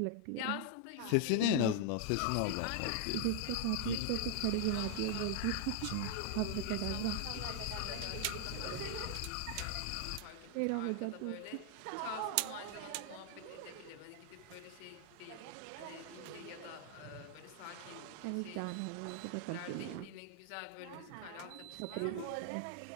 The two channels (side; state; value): both; different; correlation 0.00